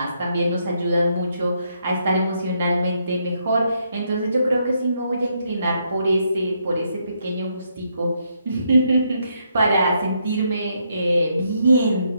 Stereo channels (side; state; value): both; inverted; correlation -0.76